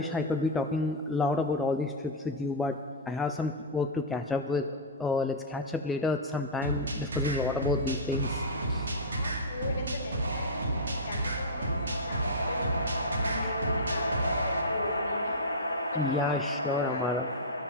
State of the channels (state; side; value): normal; both; correlation -0.08